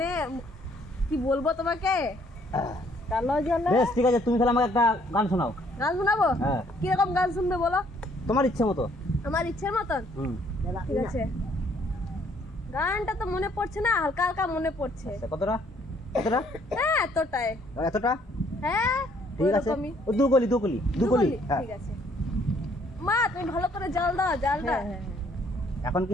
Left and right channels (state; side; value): normal; both; correlation 0.64